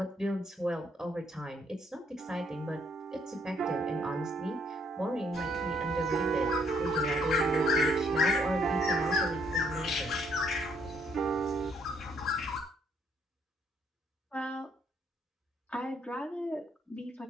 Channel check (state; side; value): normal; both; correlation 0.69